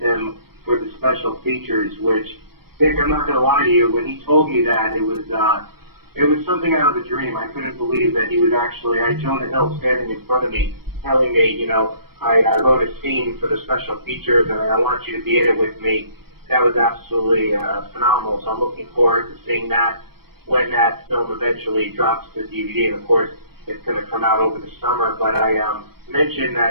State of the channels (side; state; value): left; late; 0.94 ms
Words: him for the special features, which, Nick, I'm not going to lie to you, when he told me that, it was something out of a dream. I couldn't believe that he was actually, I had Jonah Hill standing in front of me, telling me, I wrote a scene for the special features, and I want you to be in it with me. That was absolutely phenomenal, so I'm looking forward to seeing that when that film eventually drops to DVD, and of course, it's going to come out over the summer. But I mentioned